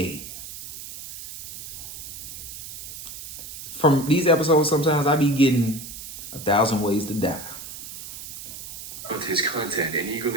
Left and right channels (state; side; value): noise; right; hiss, 11 dB below the sound